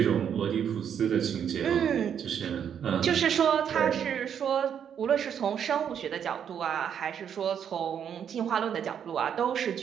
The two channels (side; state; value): left; quieter; 8.4 dB